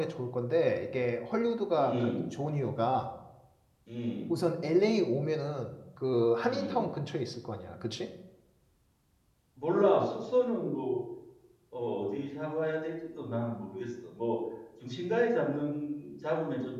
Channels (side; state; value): both; identical; correlation 1.00